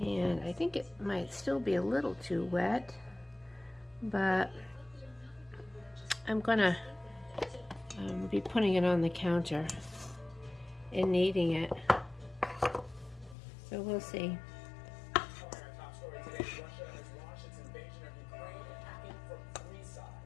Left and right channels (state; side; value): drops out; right; at 13.4 s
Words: I think it might still be a little too wet, but I'm gonna be putting it on the counter and kneading it. So we'll see.